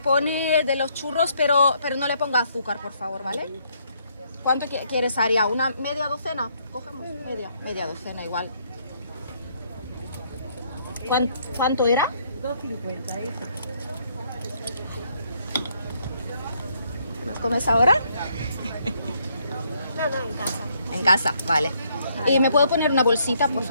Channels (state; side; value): inverted; both; correlation -0.70